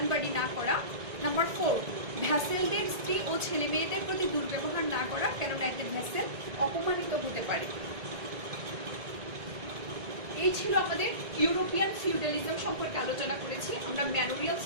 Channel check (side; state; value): left; late; 1.8 ms